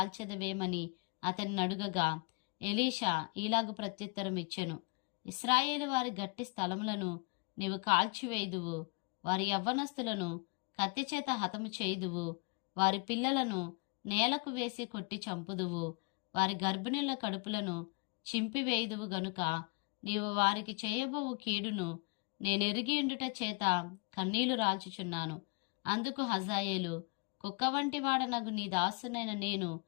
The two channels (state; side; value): quieter; right; 32.4 dB